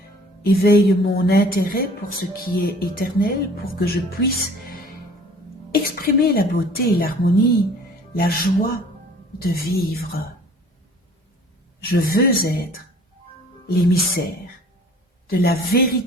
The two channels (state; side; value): normal; both; correlation 0.50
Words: Éveille mon intérêt pour ce qui est éternel, pour que je puisse exprimer la beauté et l'harmonie, la joie de vivre. Je veux être l'émissaire de la